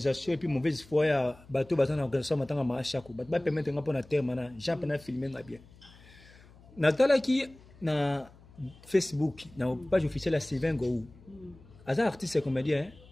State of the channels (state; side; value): noise; left; hum, 24 dB below the sound